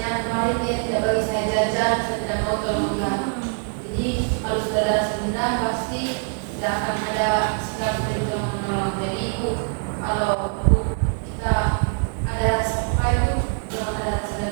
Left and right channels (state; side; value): quieter; left; 39.9 dB